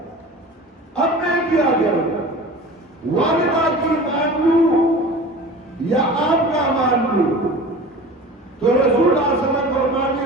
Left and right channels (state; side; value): normal; both; correlation 0.38